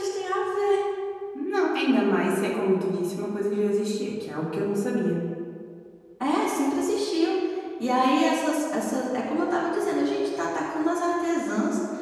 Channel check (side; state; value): both; identical; correlation 1.00